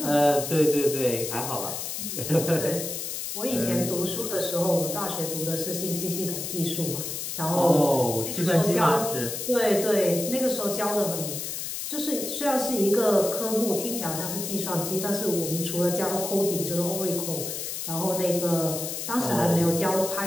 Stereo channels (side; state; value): left; noise; hiss, 5 dB below the sound